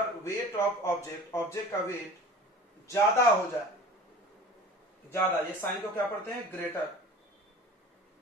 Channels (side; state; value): both; normal; correlation 0.41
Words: वेट ऑफ ऑब्जेक्ट का वेट ज्यादा हो जाए, ज्यादा, ये साइन को क्या पढ़ते हैं? ग्रेटर,